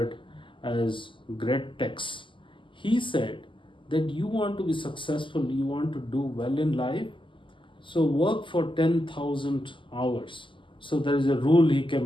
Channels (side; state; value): right; late; 0.25 ms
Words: as great texts. He said that you want to be successful, you want to do well in life, so work for 10,000 hours. So there is a rule he